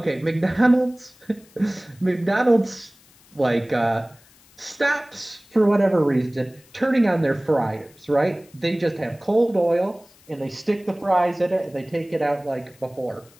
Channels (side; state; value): left; noise; hiss, 28 dB below the sound